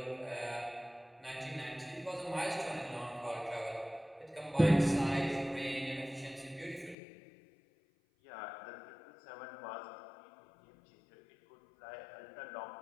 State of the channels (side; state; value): right; drops out; at 7.0 s